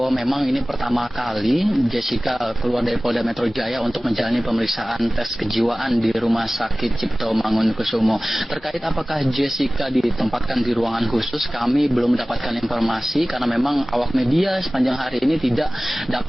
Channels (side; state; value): both; normal; correlation 0.98